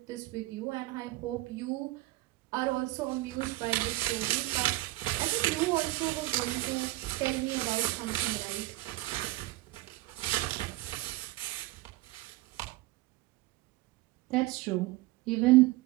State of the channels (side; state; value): left; quieter; 19.2 dB